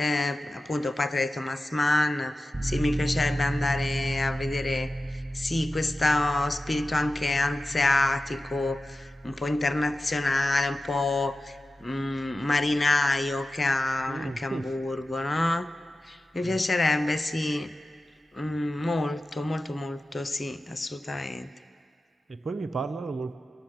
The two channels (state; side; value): normal; both; correlation 0.94